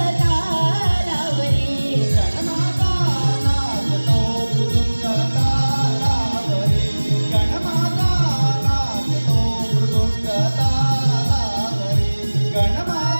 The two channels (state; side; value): inverted; both; correlation -1.00